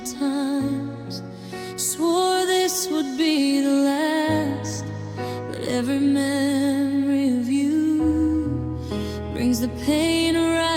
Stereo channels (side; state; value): both; identical; correlation 1.00